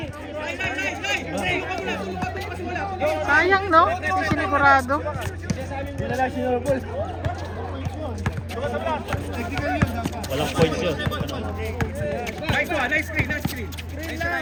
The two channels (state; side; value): identical; both; correlation 1.00